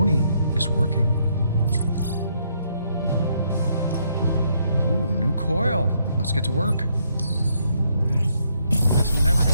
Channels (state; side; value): inverted; both; correlation -0.73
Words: is working. Ooh, new coil. Let's get to work. This never